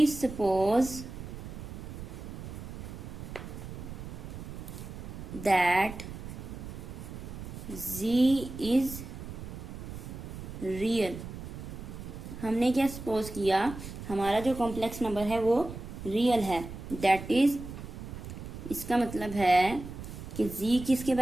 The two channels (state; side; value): noise; right; rumble, 10 dB below the sound